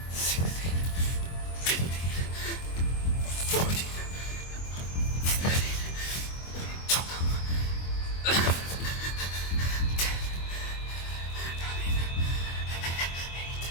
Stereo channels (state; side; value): late; right; 24 ms